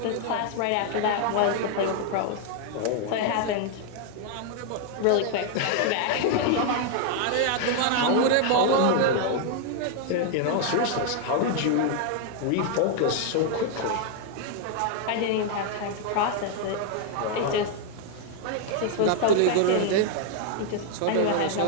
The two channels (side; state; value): both; different; correlation 0.00